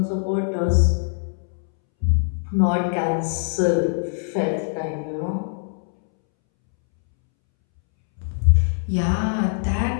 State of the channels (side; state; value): right; silent; 64 dB below the other